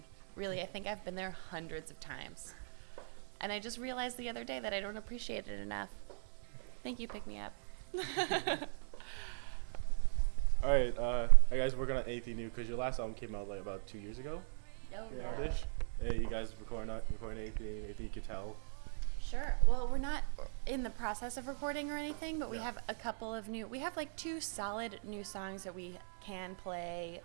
Really, I think I've been there hundreds of times. And I just realized the other day that I don't appreciate it enough. Thank you, Pick Me Up. All right, I guys working on anything new because your last album came out like about 2 years ago. Oh, Ish. Hey, you guys recording anything you could tell? Sure. Well, we're not in the process of recording or anything, but we have a couple of we have like 2 solid new songs that we can play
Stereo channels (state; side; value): silent; left; 51 dB below the other